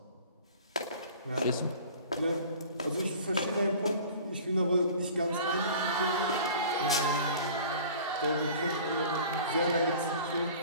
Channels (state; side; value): inverted; both; correlation -0.44